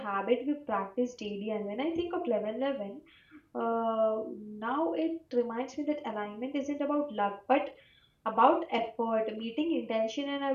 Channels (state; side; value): identical; both; correlation 1.00